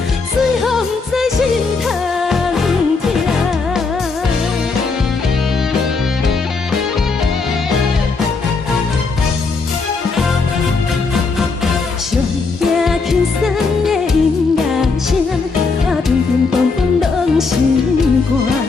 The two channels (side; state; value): right; quieter; 4.3 dB